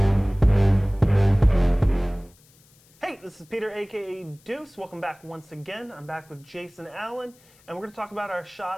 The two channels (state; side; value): noise; left; hiss, 30 dB below the sound